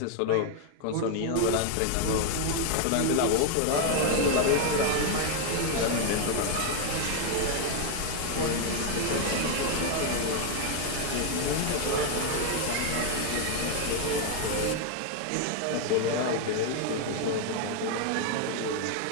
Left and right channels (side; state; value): both; different; correlation 0.01